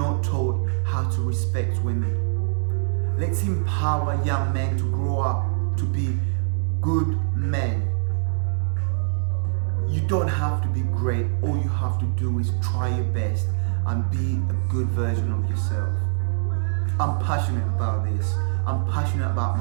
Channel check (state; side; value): silent; left; digital silence